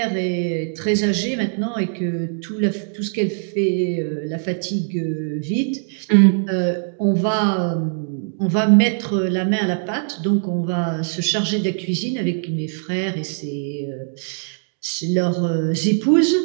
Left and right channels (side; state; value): left; silent; digital silence